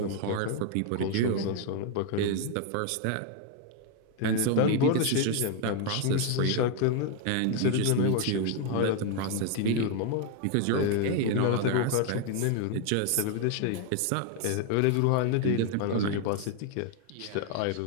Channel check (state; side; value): different; both; correlation 0.01